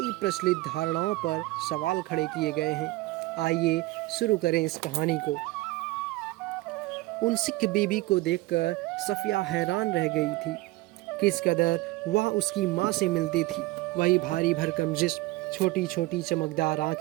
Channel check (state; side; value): quieter; left; 19.5 dB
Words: प्रचलित धारणाओं पर सवाल खड़े किए गए हैं। आइए शुरू करें इस कहानी को। उन सिख बीबी को देखकर सफ़िया हैरान रह गई थी। किस कदर वह उसकी माँ से मिलती थी। वही भारी भरकम जिस्म, छोटी छोटी चमकदार